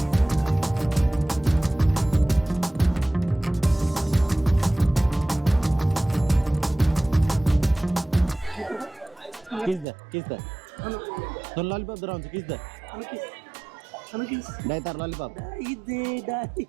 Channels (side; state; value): left; drops out; at 9.9 s